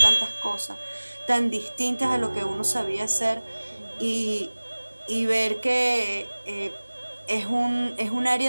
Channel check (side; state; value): both; inverted; correlation -1.00